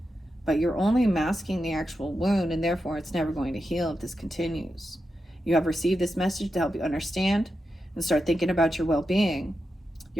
But you're only masking the actual wound, and therefore it's never going to heal if this continues. You have received this message to help you understand and start thinking about your well-being.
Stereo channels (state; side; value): normal; both; correlation 0.88